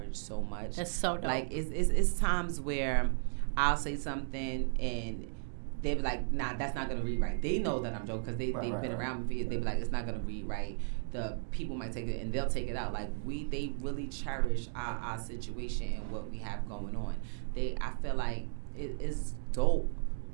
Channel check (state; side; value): silent; left; digital silence